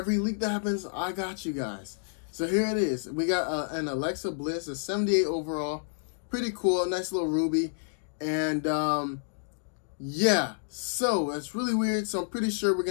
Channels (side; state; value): right; silent; digital silence